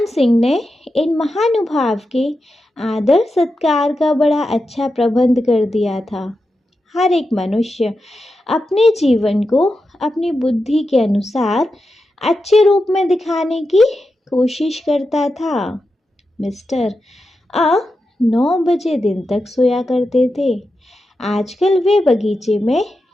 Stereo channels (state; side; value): normal; both; correlation 0.89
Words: सिंह ने इन महानुभाव के आदर सत्कार का बड़ा अच्छा प्रबंध कर दिया था। हर एक मनुष्य अपने जीवन को अपनी बुद्धि के अनुसार अच्छे रूप में दिखाने की कोशिश करता था। मिस्टर 9 बजे दिन तक सोया करते थे। आजकल वे बगीचे में